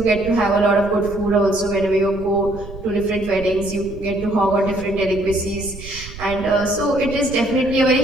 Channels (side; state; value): right; noise; rumble, 14 dB below the sound